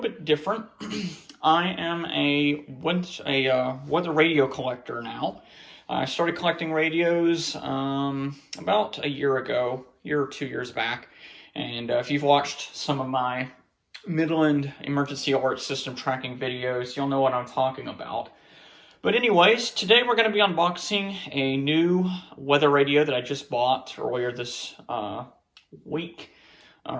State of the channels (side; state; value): both; identical; correlation 1.00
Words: different. I am a weather radio collector now. I started collecting radios about a year or 2 years back. And if you've watched some of my Midland emergency alert system tracking videos, you'll know what I'm talking about. But anyways, today we're going to be unboxing a new weather radio that I just bought earlier this week,